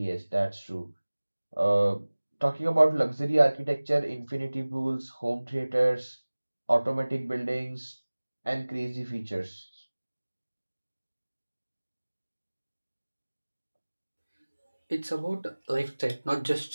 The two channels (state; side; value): inverted; both; correlation -1.00